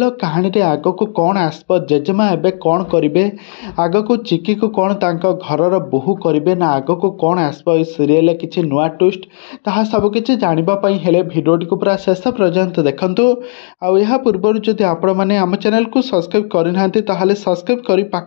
कहानी रे आग को कौन आसब जेजेमा एबे कौन करिवे आग को चिकी को कौन तांको घरर बोहू करिवे ना आग को कौन आसब ए सीरियल किछि नुआ ट्विस्ट ताहा सब किछि जानिबापी हेले भिडियोटी को पूरा शेष पर्यंत देखंतु। आउ यह पूर्व जदि आपण माने आम चैनल को सब्सक्राइब करिनाहांती ताहाले सब्सक्राइब करी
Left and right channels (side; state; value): right; silent; digital silence